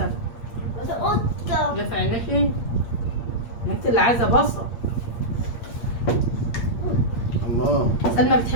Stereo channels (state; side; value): late; right; 8.6 ms